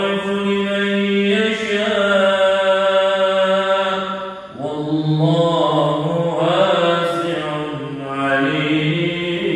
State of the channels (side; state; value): both; identical; correlation 1.00